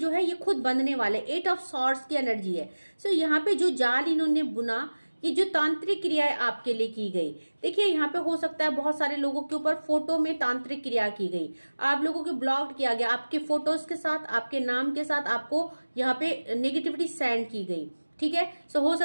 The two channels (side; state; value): both; inverted; correlation -1.00